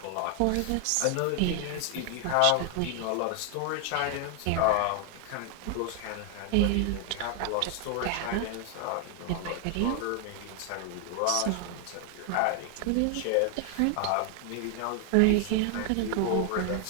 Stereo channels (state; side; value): different; both; correlation 0.00